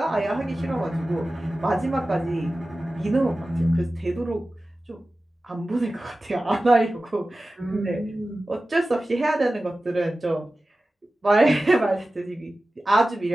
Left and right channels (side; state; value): both; normal; correlation 0.95